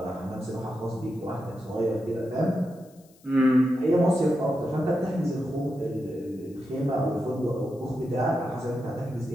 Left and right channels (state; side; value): noise; left; hiss, 29 dB below the sound